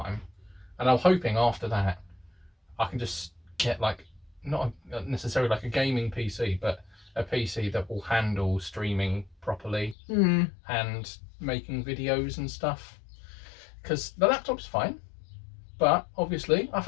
And I'm hoping after that, I can just get like, not necessarily like a gaming PC, but a PC that will handle streaming properly and making videos and stuff. Because the laptop's fine, but obviously I've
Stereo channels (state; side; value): drops out; right; at 10.0 s